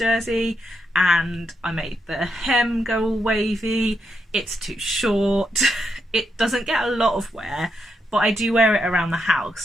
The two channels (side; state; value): both; normal; correlation 0.81